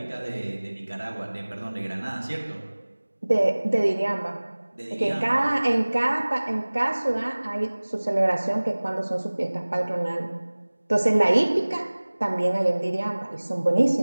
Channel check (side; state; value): both; inverted; correlation -1.00